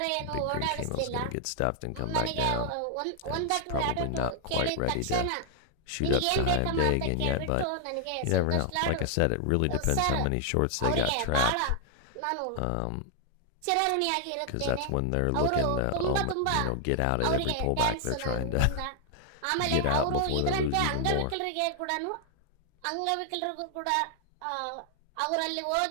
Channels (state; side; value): different; both; correlation 0.00